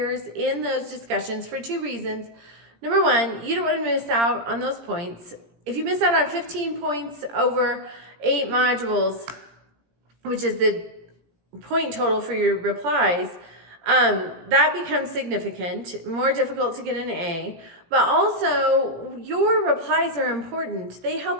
in those discussions for 2 reasons. Number 1, you don't want to miss out on those points. If you miss out on 15 points over 8 modules, which is the point total for your replies, that becomes significant, more difficult to get an A. But also, your replies are important. They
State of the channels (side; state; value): left; late; 17 ms